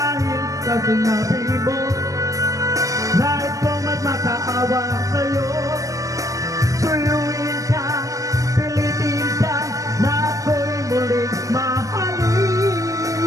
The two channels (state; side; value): late; left; 0.16 ms